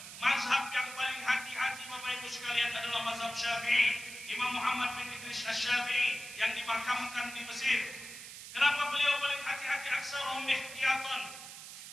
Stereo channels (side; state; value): right; noise; hiss, 12 dB below the sound